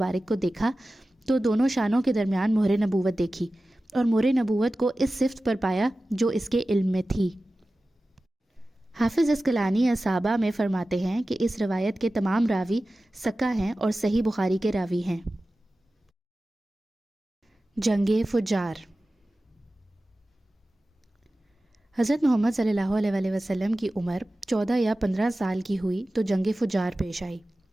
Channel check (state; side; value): normal; both; correlation 0.95